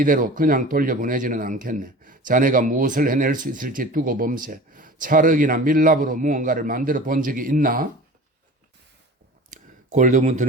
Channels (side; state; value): both; normal; correlation 0.39